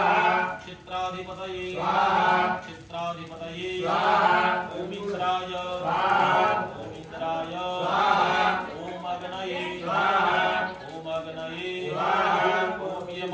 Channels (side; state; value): both; identical; correlation 1.00